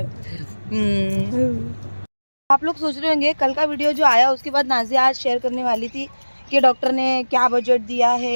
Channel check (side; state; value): both; inverted; correlation -1.00